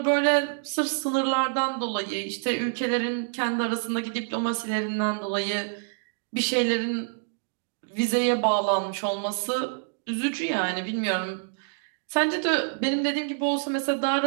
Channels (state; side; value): silent; left; digital silence